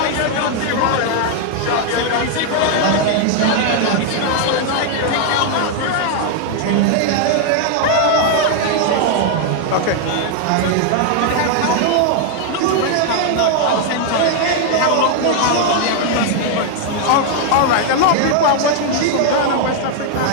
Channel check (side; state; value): both; different; correlation 0.00